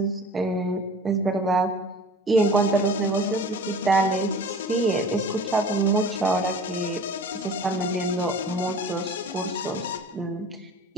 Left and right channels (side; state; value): both; normal; correlation 0.42